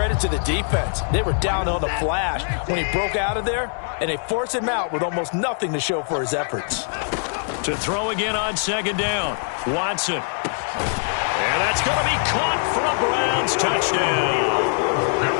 to the defense. They were down on the flash when he broke out of there, and they forced him out with almost nothing to show for his efforts. To throw again on second down, Watson. And that's going to be caught for a Browns touchdown.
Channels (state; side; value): silent; right; 64 dB below the other